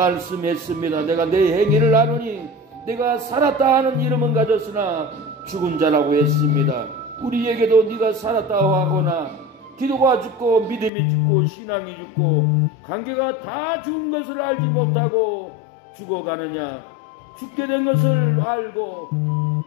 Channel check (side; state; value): right; drops out; at 10.9 s